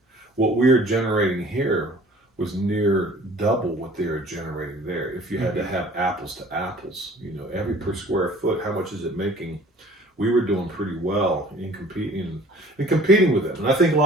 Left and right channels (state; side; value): normal; both; correlation 0.50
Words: what we were generating here was near double what they were generating there. If you had to have apples to apples, you know, every per square foot, how much is it making? We were doing pretty well in competing with them. And I think a